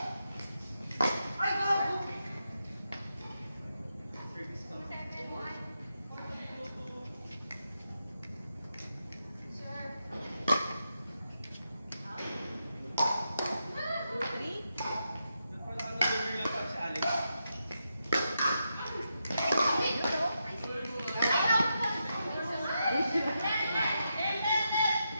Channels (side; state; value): both; inverted; correlation -0.85